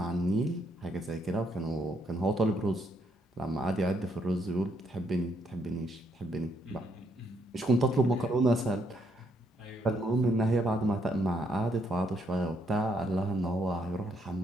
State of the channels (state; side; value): normal; both; correlation 0.74